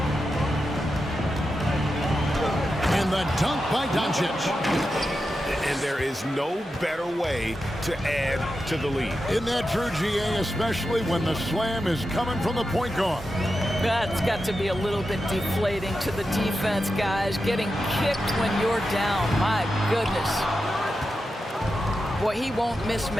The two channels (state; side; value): normal; both; correlation 0.90